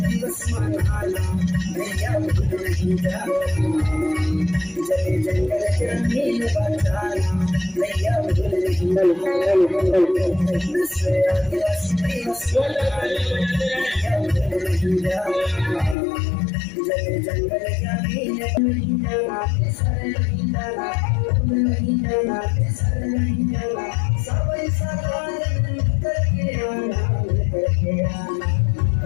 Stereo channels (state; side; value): drops out; right; at 16.0 s